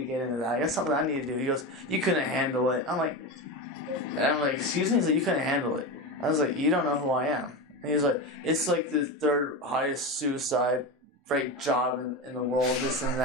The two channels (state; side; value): normal; both; correlation 0.20